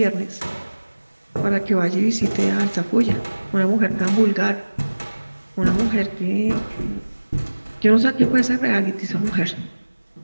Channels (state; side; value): inverted; both; correlation -1.00